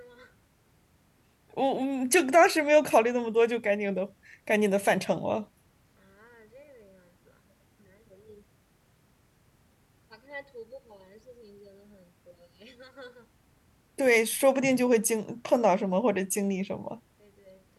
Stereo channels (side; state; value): both; identical; correlation 1.00